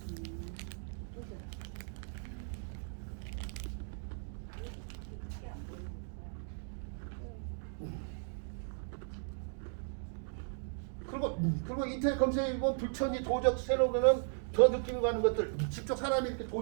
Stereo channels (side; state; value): left; silent; digital silence